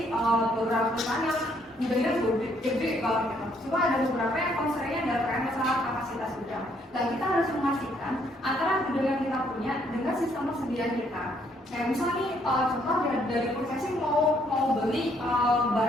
beberapa perusahaan yang gudangnya gede banget gitu. Cuma ada beberapa yang constraintnya adalah terkait masalah kapasitas gudang. Dan kita harus memastikan antara gudang yang kita punya dengan sistem persediaan kita. Kayak misalnya nih, contoh dari processing mau beli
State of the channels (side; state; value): both; normal; correlation 0.69